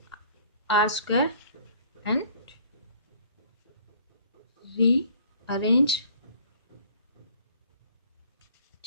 r square and rearrange.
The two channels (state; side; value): inverted; both; correlation -0.55